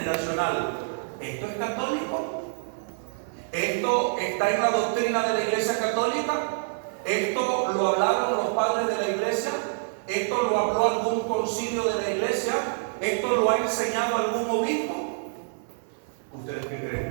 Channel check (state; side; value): silent; left; 60 dB below the other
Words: ¿Esto es católico? ¿Esto está en la doctrina de la Iglesia Católica? ¿Esto lo hablaron los padres de la Iglesia? ¿Esto lo habló algún concilio de la Iglesia? ¿Esto lo ha enseñado algún obispo? ¿Ustedes qué